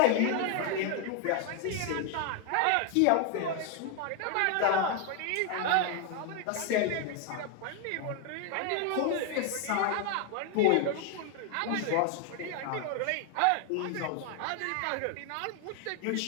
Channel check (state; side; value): different; both; correlation 0.00